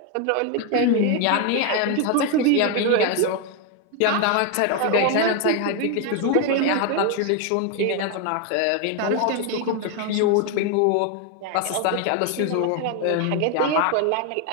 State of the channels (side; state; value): both; different; correlation 0.01